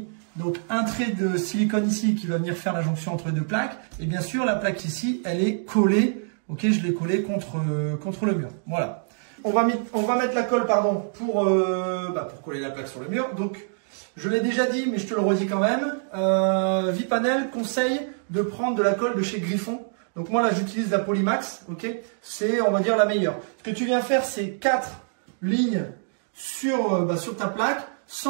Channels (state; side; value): silent; left; digital silence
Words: donc un trait de silicone ici qui va venir faire la jonction entre les deux plaques. Et bien sûr, la plaque ici, elle est collée. Ok, je l'ai collée contre le mur. Voilà. On va mettre la colle, pardon, pour coller la plaque sur le mur. Donc, je l'ai déjà dit, mais je te le redis quand même. Vipanel conseille de prendre de la colle de chez Griffon. Donc moi là, j'utilise la Polymax. Ok, c'est on va dire la meilleure. Ce que tu viens faire, c'est 4 lignes sur ta plaque,